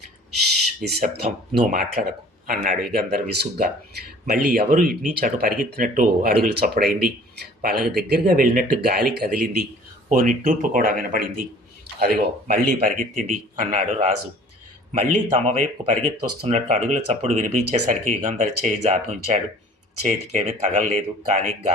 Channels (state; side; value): normal; both; correlation 0.50